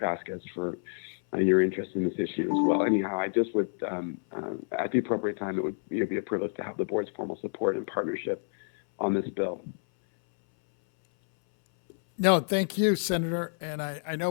for your interest in this issue as well. Anyhow, I just would, at the appropriate time, it would be a privilege to have the board's formal support and partnership on this bill. No, thank you, Senator. And I know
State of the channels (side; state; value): right; silent; 59 dB below the other